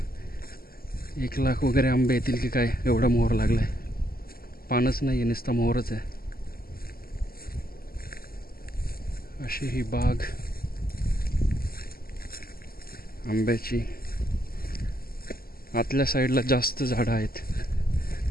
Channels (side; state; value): right; late; 0.43 ms